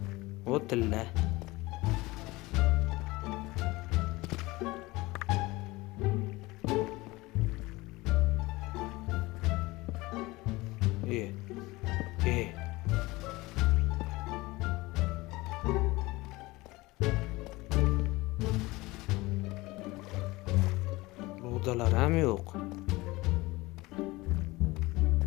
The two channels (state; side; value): quieter; right; 21.1 dB